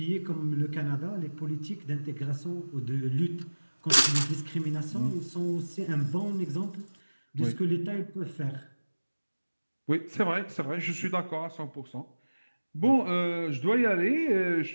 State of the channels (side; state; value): both; inverted; correlation -1.00